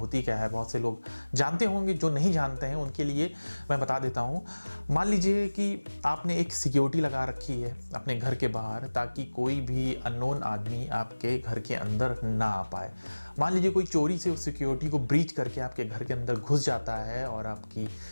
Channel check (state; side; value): inverted; both; correlation -1.00